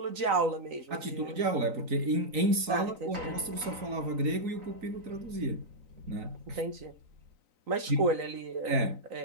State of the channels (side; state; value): left; late; 3.9 ms